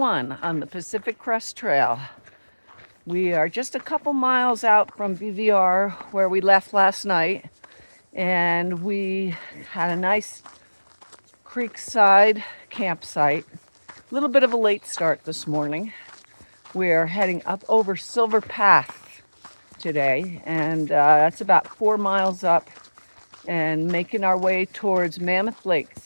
on the Pacific Crest Trail. We are just a couple miles out from BVR where we left last night, and we had a nice creekside campsite. A little bit of a late start this morning. We're heading up over Silver Path today, and that's about 4 miles up, and making our way towards Mammoth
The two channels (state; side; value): inverted; both; correlation -1.00